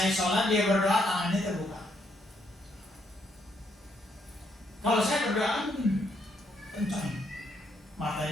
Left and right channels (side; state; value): both; normal; correlation 0.74